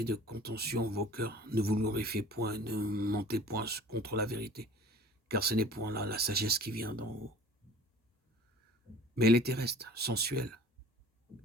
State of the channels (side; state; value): both; normal; correlation 0.46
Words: de contention en vos cœurs, ne vous glorifiez point, ne mentez point contre la vérité, car ce n'est point là la sagesse qui vient d'en haut. Mais elle est terrestre, sensuelle